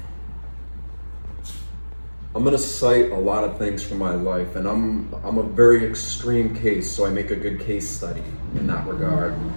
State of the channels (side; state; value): both; inverted; correlation -1.00